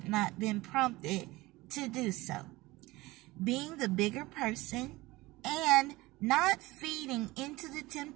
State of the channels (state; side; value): quieter; left; 20.2 dB